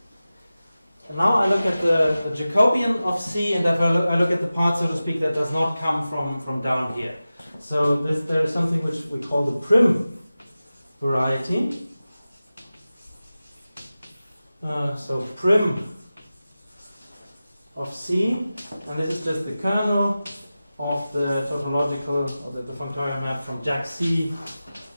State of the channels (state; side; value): inverted; both; correlation -0.95